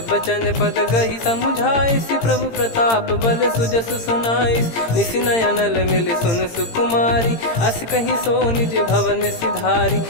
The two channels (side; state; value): right; late; 18 ms